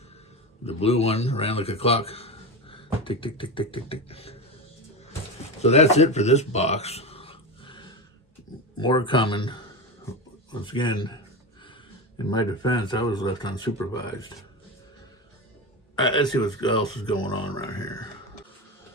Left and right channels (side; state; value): both; normal; correlation 0.20